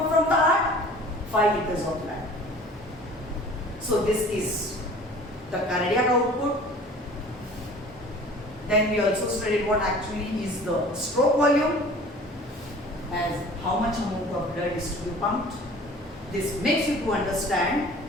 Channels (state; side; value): normal; both; correlation 0.46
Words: from the heart? 5 liters of blood. So this is the cardiac output. Then we also studied what actually is the stroke volume, as how much amount of blood is to be pumped. This makes you to understand